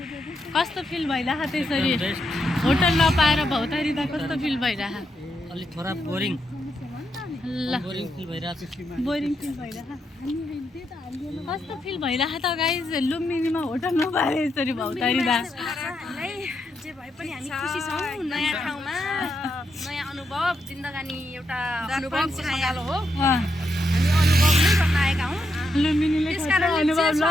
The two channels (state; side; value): normal; both; correlation 0.82